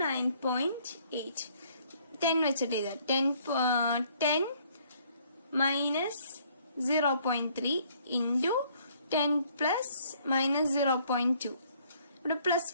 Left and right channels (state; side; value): inverted; both; correlation -0.63